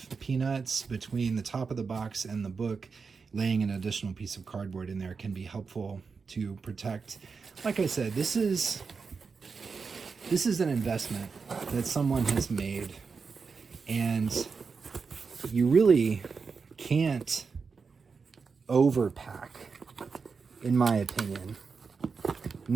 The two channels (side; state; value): left; quieter; 5.1 dB